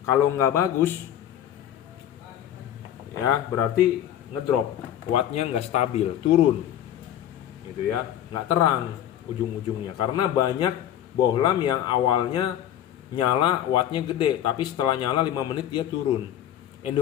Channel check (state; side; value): quieter; right; 11.2 dB